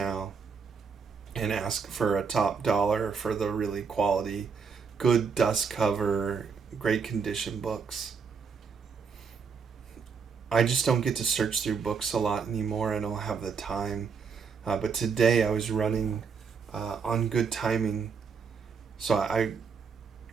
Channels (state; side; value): quieter; left; 5.8 dB